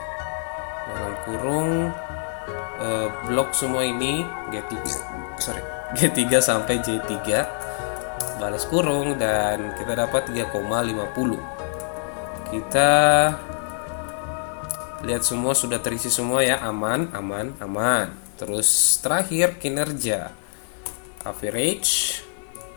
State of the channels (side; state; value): right; silent; digital silence